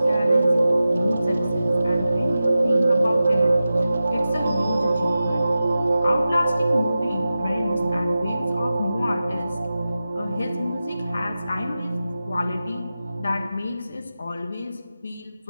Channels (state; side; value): inverted; both; correlation -0.94